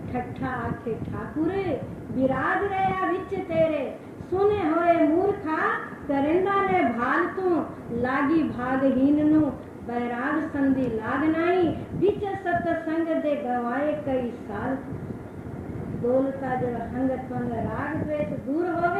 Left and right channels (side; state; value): both; identical; correlation 1.00